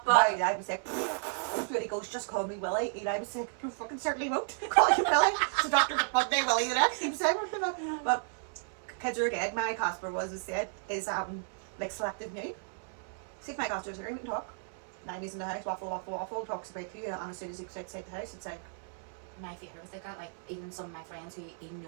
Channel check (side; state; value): left; silent; 56 dB below the other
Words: it. My Eli was like, when he goes, just call me Willie. Eli was like, you fucking certainly won't call you Willie. So Dr. one day Willie the next. He was saying, but kids are good. My Casper was said is like selective nude. See if my Casper's here, we can talk. 90s in the house, waffle, talks about to you, and as soon as he goes outside the house, it's like, my favourite was like that, like even some of my friends who he'd